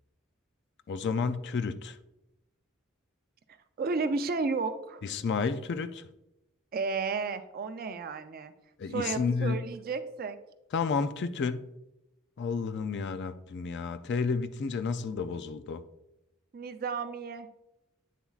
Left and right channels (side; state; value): both; normal; correlation 0.40